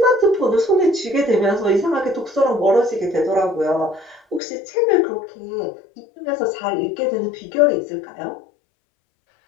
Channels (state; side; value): drops out; right; at 4.4 s